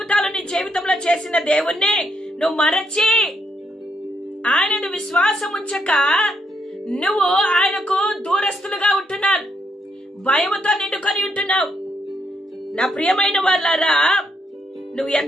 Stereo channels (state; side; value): normal; both; correlation 0.76